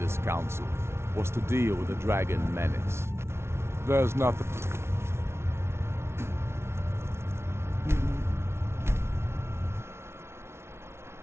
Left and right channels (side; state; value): left; late; 0.12 ms